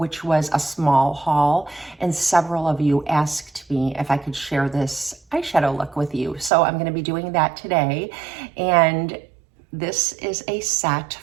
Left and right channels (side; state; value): left; drops out; at 6.5 s